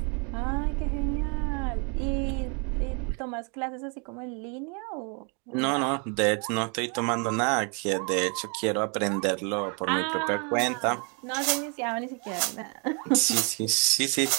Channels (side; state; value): left; quieter; 36.2 dB